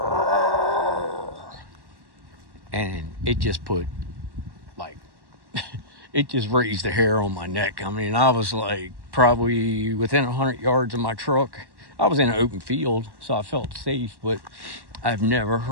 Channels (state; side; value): late; left; 1.1 ms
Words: and it just put, like, it just raised the hair on my neck. I mean, I was like probably within 100 yards of my truck. I was in an open field, so I felt safe, but I've never